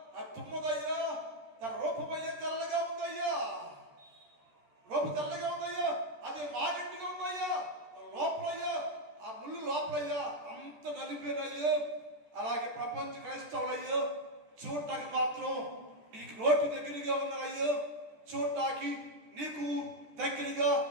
తుమ్మదయ్యా, తన రూపమయ్యా తెల్లగా ఉందయ్యా, రూపు తెల్లగా ఉందయ్యా, అది మాగట్టిగా ఉందయ్యా, లోపలయ్యా ఆ ముళ్ళు లోపలయ్యా అంత నలిపేనయ్యా. అలాగే ప్రపంచ క్రైస్తవులయ్యా చూడటానికి మాత్రం నీకు నోటి దగ్గరగా ఉన్నారయ్యా, చూడటానికి నీకు దగ్గరగా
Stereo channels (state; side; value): late; left; 14 ms